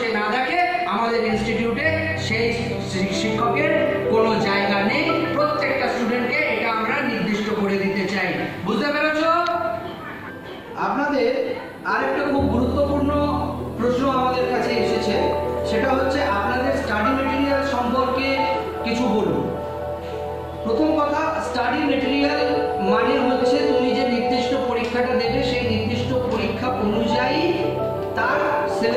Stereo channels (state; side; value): identical; both; correlation 1.00